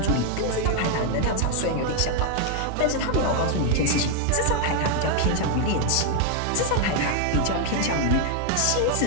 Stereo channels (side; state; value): both; different; correlation 0.00